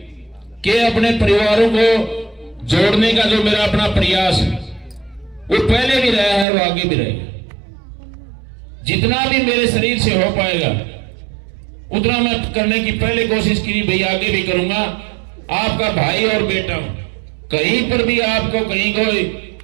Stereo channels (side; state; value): left; drops out; at 6.5 s